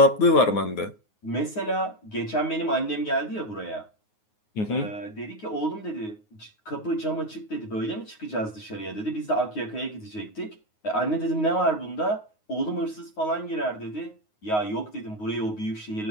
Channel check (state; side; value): late; right; 9.5 ms